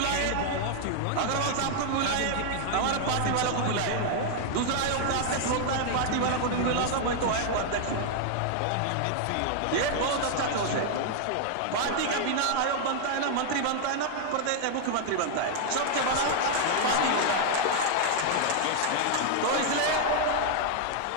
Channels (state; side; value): different; both; correlation 0.00